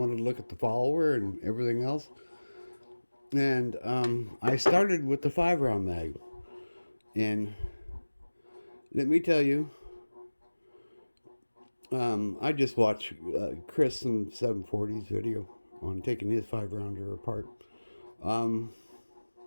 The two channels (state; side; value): inverted; both; correlation -1.00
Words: to look at the follower and everything else. And I started with the 5 round mag. And let me tell you, I just watched Chris and 740's video on taking his 5 rounder apart.